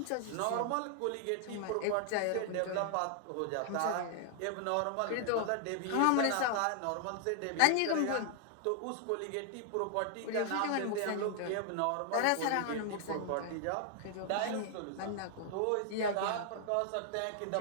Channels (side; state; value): both; different; correlation 0.00